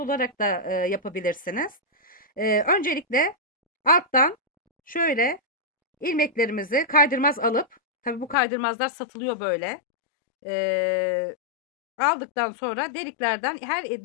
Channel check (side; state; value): right; drops out; at 8.3 s